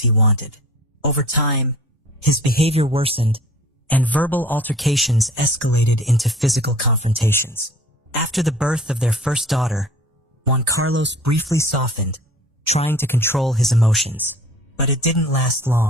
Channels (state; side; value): normal; both; correlation 0.47